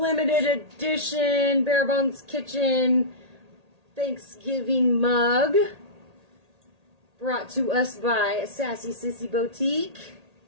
edition Bare Bones Kitchen Thanksgiving mug brought to us by Sassy Sissy Boutique.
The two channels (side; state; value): left; late; 1.8 ms